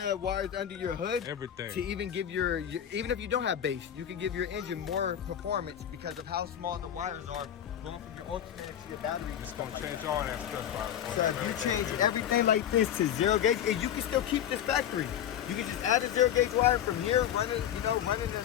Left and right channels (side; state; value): right; quieter; 10.1 dB